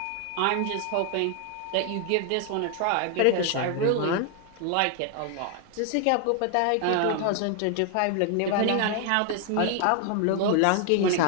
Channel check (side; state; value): both; different; correlation 0.00